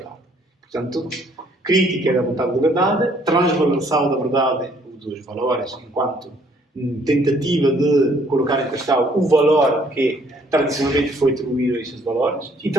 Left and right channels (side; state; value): both; normal; correlation 0.63